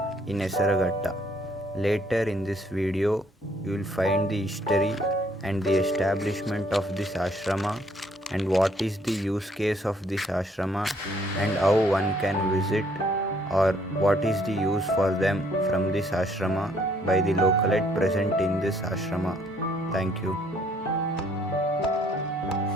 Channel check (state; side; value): normal; both; correlation 0.65